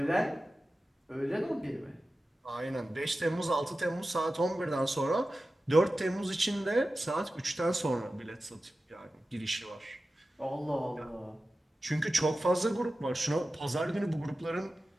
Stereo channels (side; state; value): both; normal; correlation 0.94